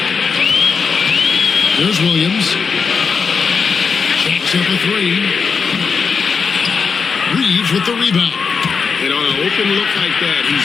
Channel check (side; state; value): right; quieter; 5.6 dB